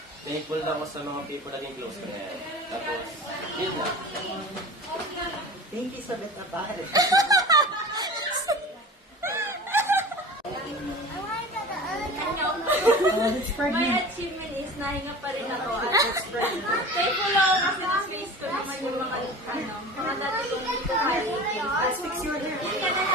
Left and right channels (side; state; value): both; normal; correlation 0.36